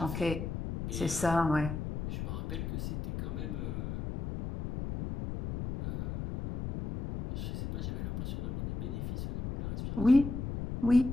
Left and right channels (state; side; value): noise; left; rumble, 5 dB below the sound